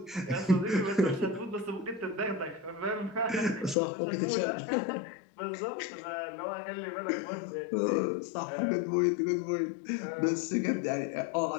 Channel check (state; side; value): drops out; right; at 3.8 s